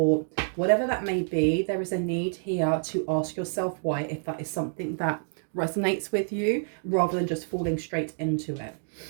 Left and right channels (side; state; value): left; silent; 59 dB below the other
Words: whatever that may be, there is a need here to ask yourself why, if that is something that resonates with you, rather than just falling straight into it.